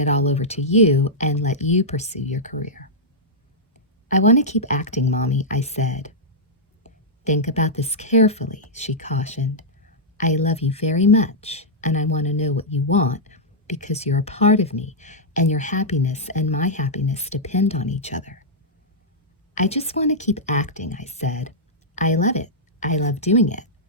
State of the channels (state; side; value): normal; both; correlation -0.09